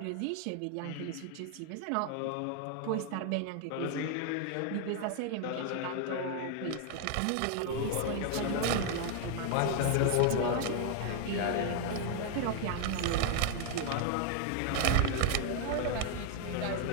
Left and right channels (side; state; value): both; different; correlation 0.00